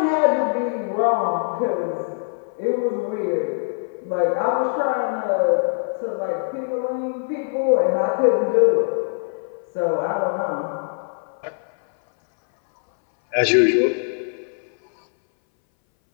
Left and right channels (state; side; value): silent; right; 61 dB below the other